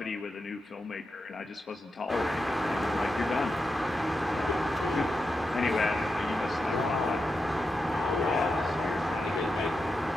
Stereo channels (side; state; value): both; normal; correlation 0.88